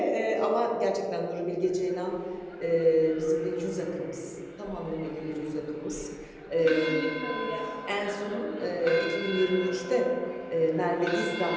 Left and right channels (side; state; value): both; identical; correlation 1.00